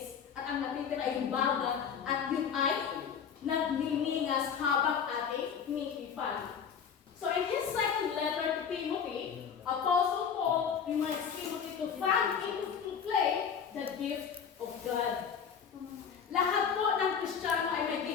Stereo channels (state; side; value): quieter; right; 7.2 dB